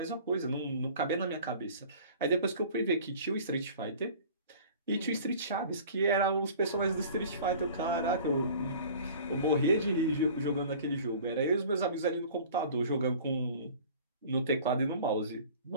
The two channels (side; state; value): both; inverted; correlation -0.45